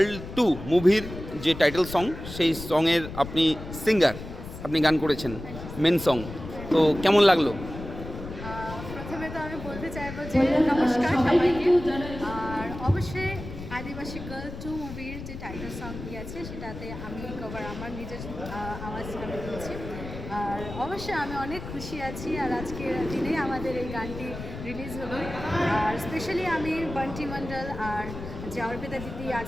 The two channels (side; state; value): left; noise; rumble, 10 dB below the sound